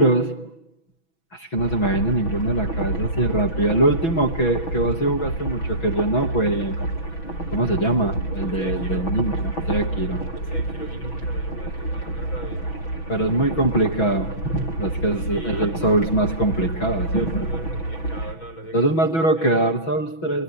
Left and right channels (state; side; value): late; right; 6.1 ms